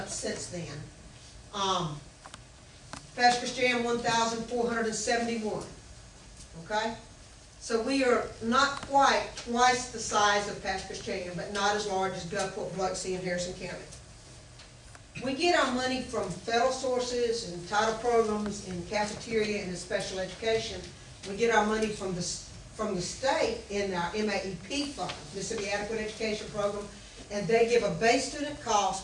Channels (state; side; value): identical; both; correlation 1.00